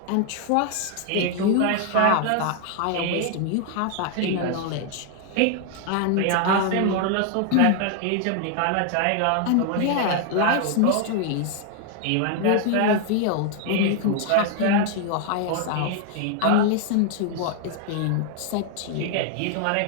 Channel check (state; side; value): different; both; correlation 0.00